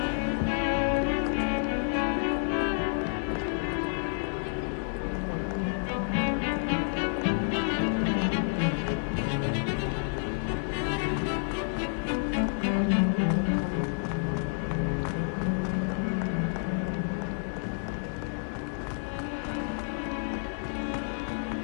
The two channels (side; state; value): right; silent; digital silence